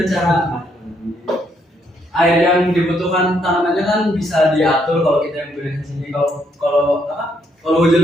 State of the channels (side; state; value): both; normal; correlation 0.73